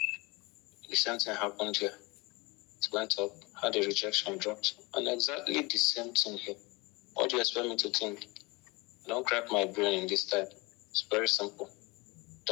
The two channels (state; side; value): quieter; right; 25.3 dB